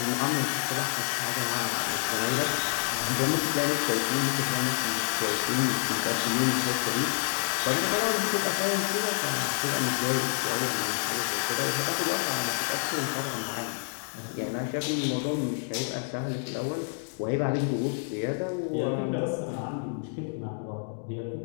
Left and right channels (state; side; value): silent; right; digital silence